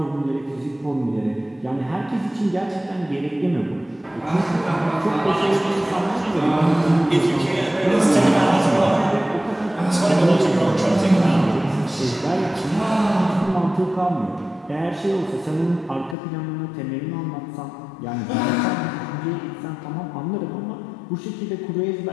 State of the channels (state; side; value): drops out; right; at 16.2 s